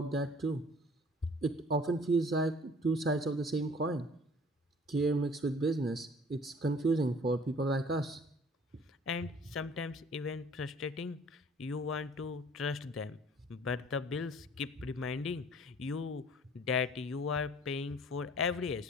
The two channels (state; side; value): normal; both; correlation 0.52